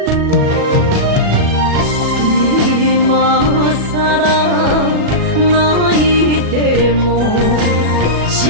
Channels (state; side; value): late; left; 37 ms